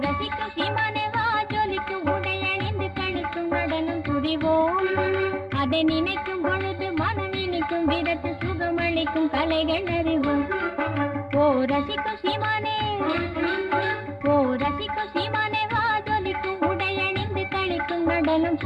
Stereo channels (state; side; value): identical; both; correlation 1.00